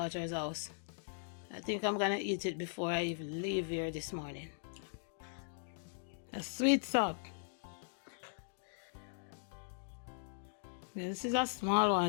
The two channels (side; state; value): right; silent; digital silence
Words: house. I think I'm gonna eat it before I even leave here this morning. A sweet sock. Yeah, this is a small